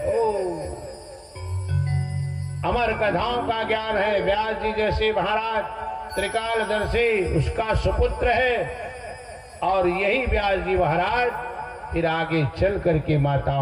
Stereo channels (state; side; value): identical; both; correlation 1.00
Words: अमर कथाओं का ज्ञान है। व्यास जी जैसे महाराज त्रिकालदर्शी उसका सुपुत्र है। और यही व्यास जी महाराज फिर आगे चल करके